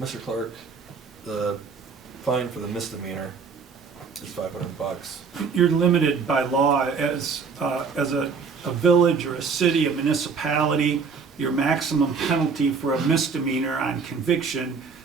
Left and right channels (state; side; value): quieter; left; 5.4 dB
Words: Clark, the fine for the misdemeanor is $500. You're limited by law as a village or a city, a municipality. your maximum penalty for a misdemeanor on conviction